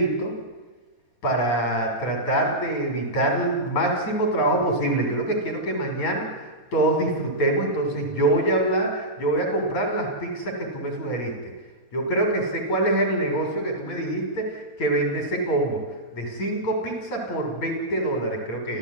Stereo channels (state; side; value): late; right; 4.2 ms